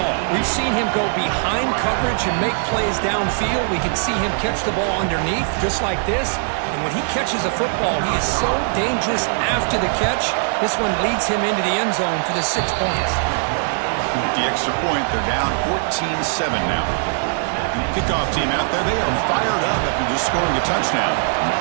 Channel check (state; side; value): silent; left; 62 dB below the other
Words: We've seen him go behind coverage and make plays downfield. We can see him catch the ball underneath, just like this. And when he catches a football, he is so dangerous after the catch. This one leads him into the end zone for the 6 points. With the extra point, they're down 14-7 now. Kickoff team out there, they are fired up after just scoring a touchdown.